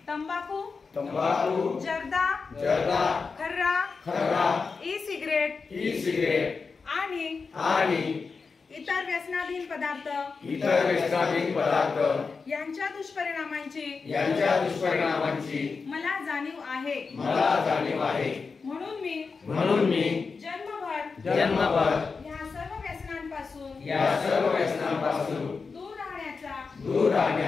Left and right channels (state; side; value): quieter; right; 4.8 dB